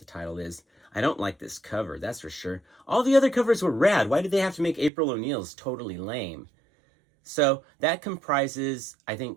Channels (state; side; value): drops out; left; at 4.9 s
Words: title is. I don't like this cover, that's for sure. All the other covers were rad. Why did they have to make April O'Neil's totally lame? So that comprises, I